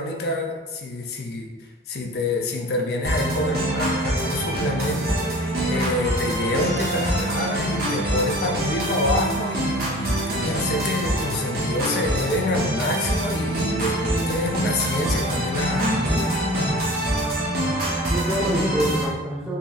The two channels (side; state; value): both; normal; correlation 0.42